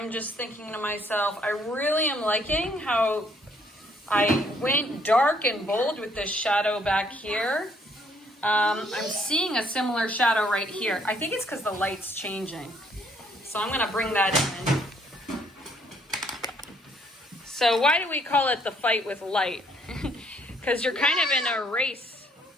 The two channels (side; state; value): both; normal; correlation 0.66